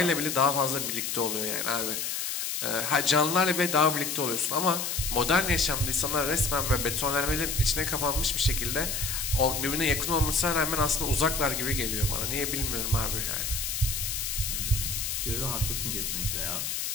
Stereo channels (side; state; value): left; noise; hiss, 2 dB below the sound